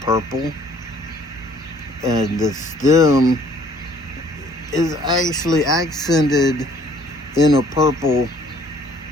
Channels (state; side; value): normal; both; correlation 0.58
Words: purple, and the stem is actually accented in a purple,